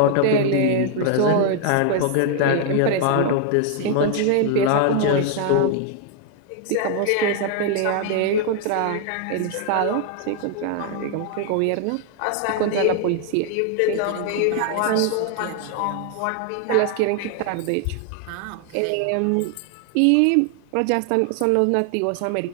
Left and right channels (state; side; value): different; both; correlation 0.00